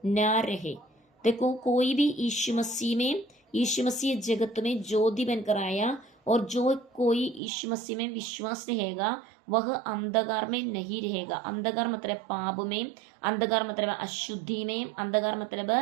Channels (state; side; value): drops out; left; at 7.4 s